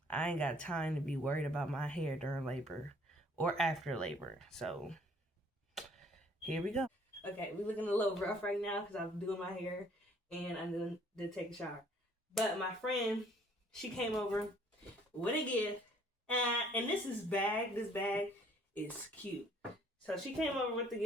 I ain't got time to be worried about my hair during labor or after labor. So here we go. Okay, we're looking a little rough right now because I'm doing my hair and I'm going to take a shower. But my friend, she came over with a gift. And this bag is cute. So she came over with the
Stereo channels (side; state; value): both; normal; correlation 0.59